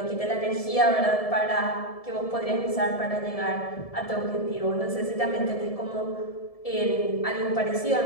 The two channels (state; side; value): late; right; 1.7 ms